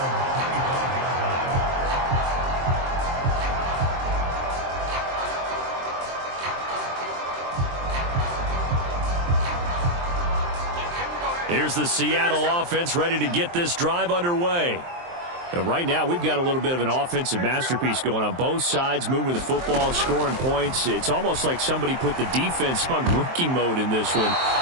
Here's the Seattle offense ready to get this drive underway. Right now, we've got a little bit of an offensive masterpiece going on both sides, moving the football, scoring points. It's almost like somebody put the defense on rookie mode in this one.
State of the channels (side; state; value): left; late; 23 ms